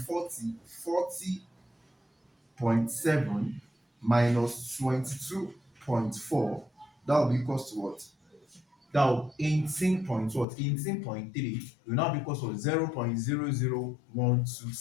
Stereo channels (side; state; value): right; drops out; at 10.5 s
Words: minus 22.4. That will be equals to what? That will 18 point what? 18.3 will now be equals to 0.0012